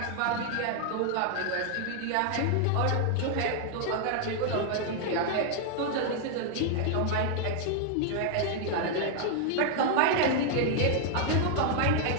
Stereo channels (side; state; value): both; different; correlation 0.00